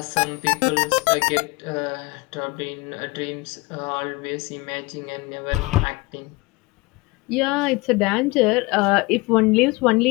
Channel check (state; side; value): quieter; right; 23.4 dB